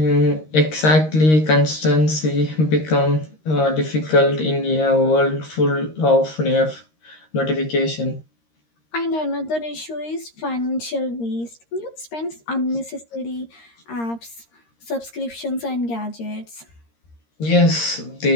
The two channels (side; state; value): right; late; 13 ms